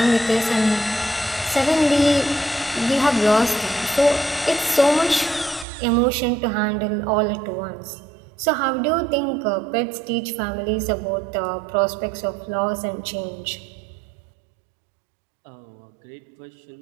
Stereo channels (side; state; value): left; drops out; at 5.7 s